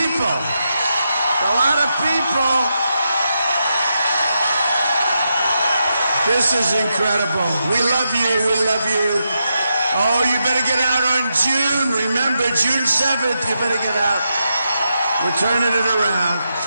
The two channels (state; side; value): inverted; both; correlation -0.85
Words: A lot of people. This is incredible. We love you. We love you. Oh, you better get out on June. Remember, June 7th, you better get out. We're turning it around.